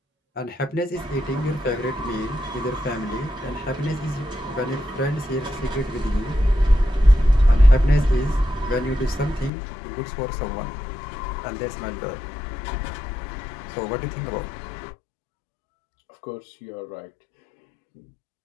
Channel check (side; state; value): right; drops out; at 9.5 s